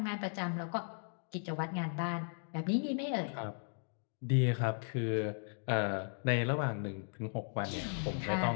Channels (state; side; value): silent; right; 53 dB below the other